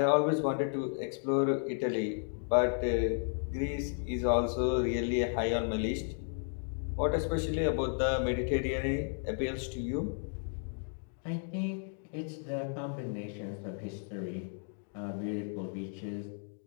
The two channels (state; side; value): silent; right; 55 dB below the other